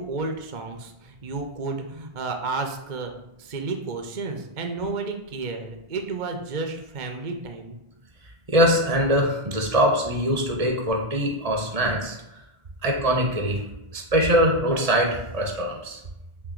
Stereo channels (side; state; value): left; late; 1.7 ms